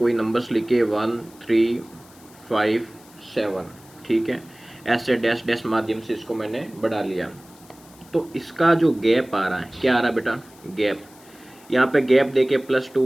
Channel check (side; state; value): left; noise; hiss, 25 dB below the sound